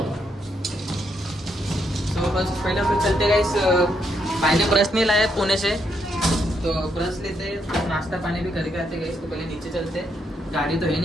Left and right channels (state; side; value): normal; both; correlation 0.77